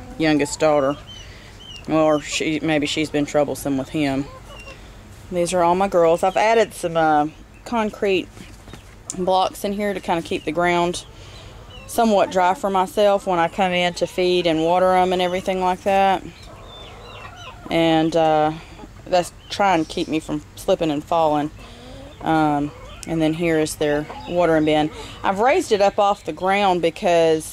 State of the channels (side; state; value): both; identical; correlation 1.00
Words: youngest daughter. Or maybe she's been troublesome with him. These are all my girls. I've added some concrete blocks in here to kind of keep the ground somewhat dry for myself when I come in to feed and water them and everything like that. And that's trying to keep me from slipping and falling. And then here is their watering bin. I've raised it up off the ground